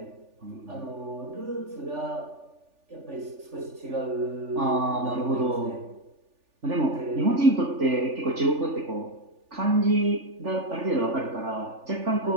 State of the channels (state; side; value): late; left; 3.4 ms